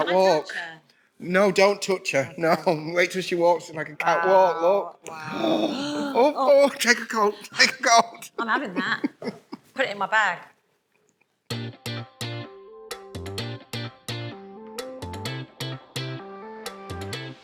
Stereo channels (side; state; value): both; identical; correlation 1.00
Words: I catwalk. touch her? No, don't touch her. No, wait till she walks. It's like a catwalk. Look. Wow. Oh, take a coat. Take a coat. I'm having that. Put it in my bag.